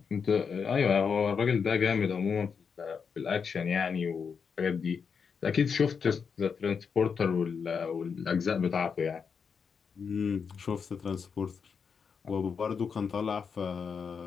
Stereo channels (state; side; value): quieter; right; 6.1 dB